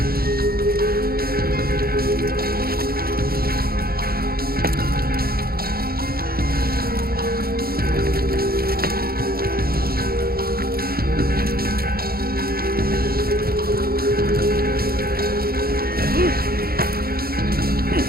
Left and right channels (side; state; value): left; late; 0.44 ms